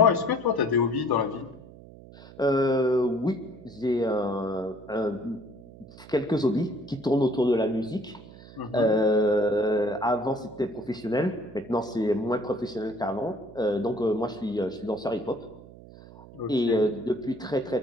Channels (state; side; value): noise; right; hum, 19 dB below the sound